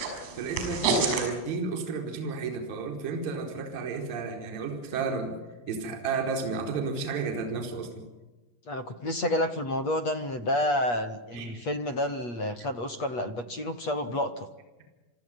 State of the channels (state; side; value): late; right; 8.4 ms